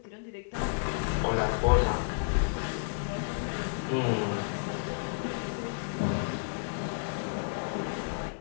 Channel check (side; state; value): right; silent; 55 dB below the other